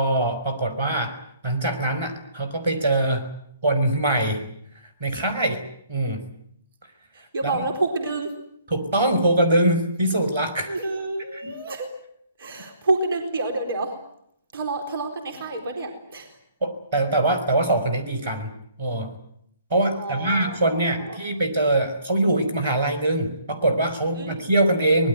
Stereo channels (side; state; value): both; inverted; correlation -0.61